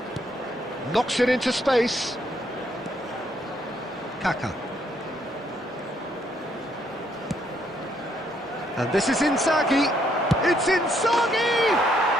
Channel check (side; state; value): both; normal; correlation 0.71